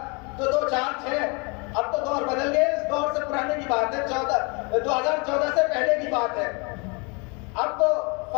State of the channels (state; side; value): quieter; right; 30.9 dB